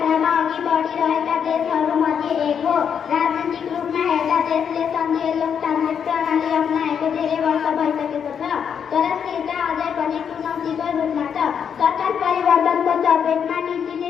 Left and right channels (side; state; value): right; quieter; 7.6 dB